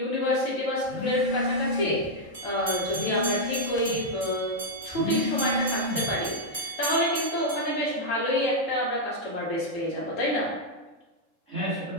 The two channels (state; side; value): late; right; 3.7 ms